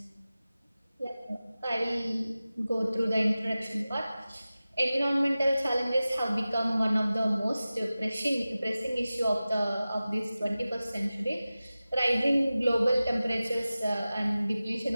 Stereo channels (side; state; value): both; inverted; correlation -0.96